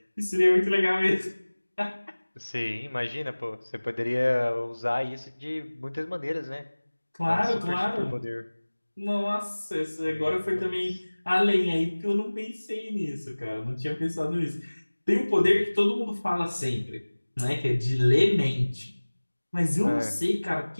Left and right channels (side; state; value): both; inverted; correlation -1.00